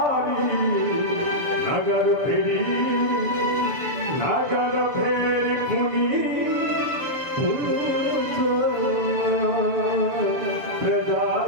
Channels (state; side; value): late; left; 7.0 ms